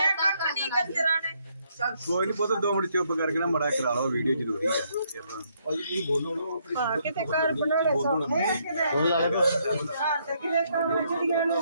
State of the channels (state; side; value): inverted; both; correlation -0.72